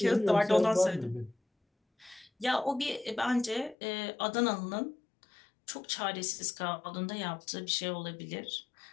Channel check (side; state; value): right; drops out; at 3.8 s